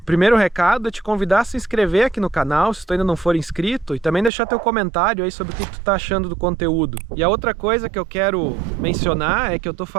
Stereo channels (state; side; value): drops out; left; at 4.3 s